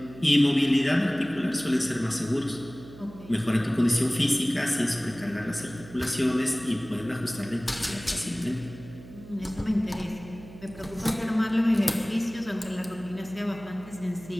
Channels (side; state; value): right; noise; hum, 18 dB below the sound